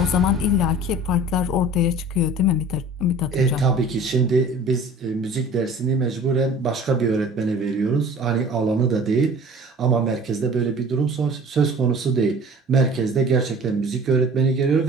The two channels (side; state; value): both; normal; correlation 0.45